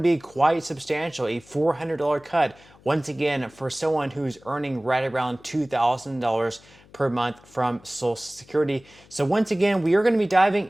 be quite substantial. A $400 cut, once again, for someone who's earning right around $2,000 per month from Social Security. So once again, we are going to be diving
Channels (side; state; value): left; noise; hum, 26 dB below the sound